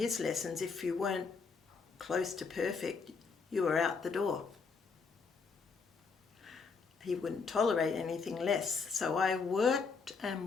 lessons, if you weren't close to perfect, you were out the door. He wouldn't tolerate anything less. So I worked and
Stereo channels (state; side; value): quieter; right; 5.0 dB